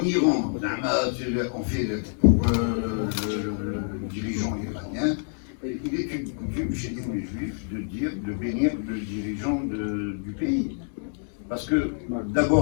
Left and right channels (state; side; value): silent; right; digital silence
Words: Iran, on fait pour le dirigeant iranien. Il est une coutume chez nous les juifs de bénir le dirigeant du pays. Parce que,